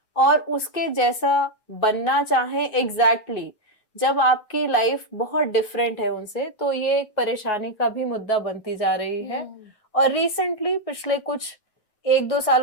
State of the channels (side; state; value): right; late; 9.4 ms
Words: और उसके जैसा बनना चाहें एग्जैक्टली, जब आपकी लाइफ बहुत डिफरेंट है उनसे, तो ये एक परेशानी का भी मुद्दा बनती जा रही है। और रिसेंटली पिछले कुछ 1-2